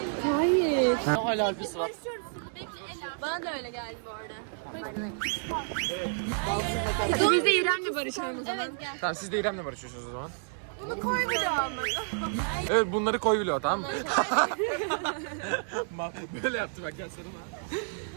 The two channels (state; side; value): silent; left; digital silence